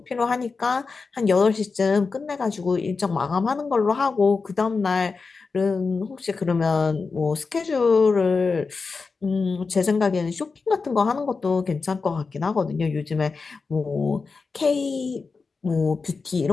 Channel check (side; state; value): right; quieter; 4.5 dB